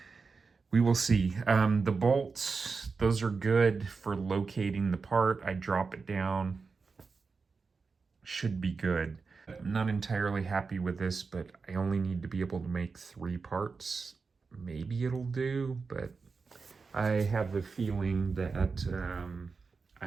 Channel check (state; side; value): quieter; left; 4.7 dB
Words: We will see. The bolts, those are good for locating the part. I drop it down. Should be good. I'm not entirely happy with this, but I only need to be able to make 3 parts. Maybe it'll do, but I have the feeling that